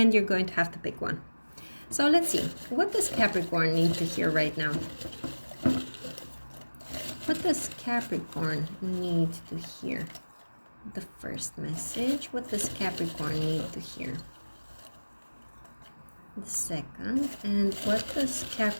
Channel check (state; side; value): inverted; both; correlation -1.00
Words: you're going to have to pick one. So let's see. What does Capricorn need to hear right now? What does Capricorn need to hear? The first message. What does Capricorn need to hear? The second. And what does